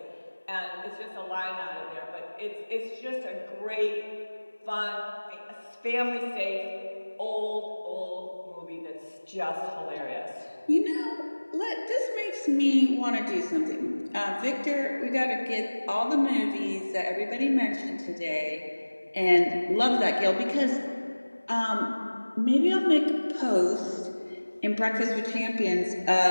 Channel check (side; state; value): both; inverted; correlation -1.00